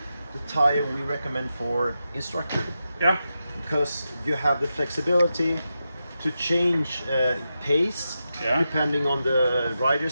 tire we recommend for instructor. Yeah. Because you have the flexibility to change pace depending on the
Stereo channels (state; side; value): inverted; both; correlation -0.89